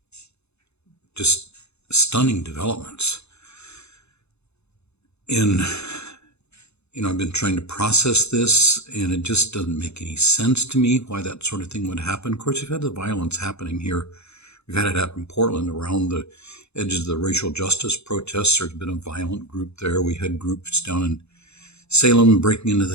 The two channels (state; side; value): late; right; 0.80 ms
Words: just stunning developments. And, I've been trying to process this, and it just doesn't make any sense to me why that sort of thing would happen. Of course, we've had the violence happening here. We've had it happen in Portland around the edges of the racial justice protests. There's been a violent group there. We had groups down in Salem breaking into